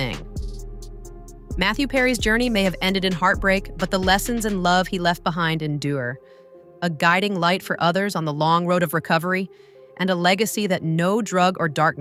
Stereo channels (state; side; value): identical; both; correlation 1.00